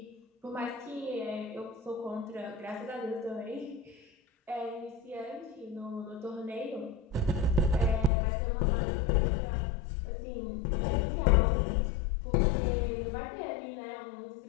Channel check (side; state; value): right; drops out; at 8.1 s